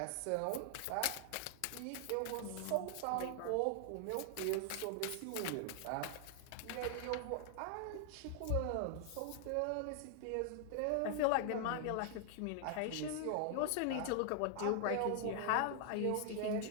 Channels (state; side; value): different; both; correlation 0.00